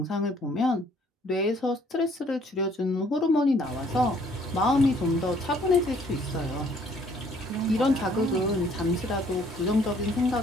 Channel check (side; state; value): both; normal; correlation 0.61